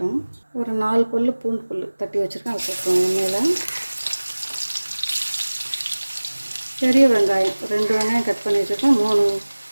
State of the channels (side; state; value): both; inverted; correlation -1.00